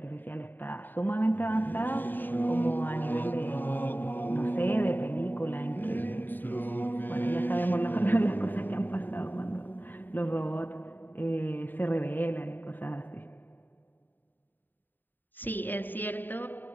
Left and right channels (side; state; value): right; late; 0.091 ms